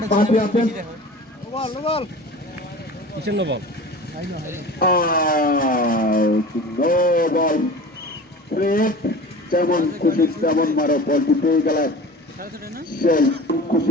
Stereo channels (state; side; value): normal; both; correlation 0.37